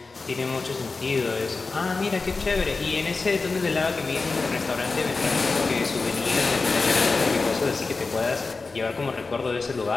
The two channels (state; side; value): quieter; right; 4.0 dB